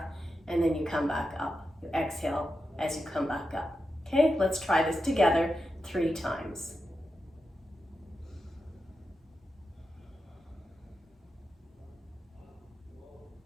and then you come back up. You exhale as you come back up. Okay, let's try this together 3 times.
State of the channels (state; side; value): normal; both; correlation 0.89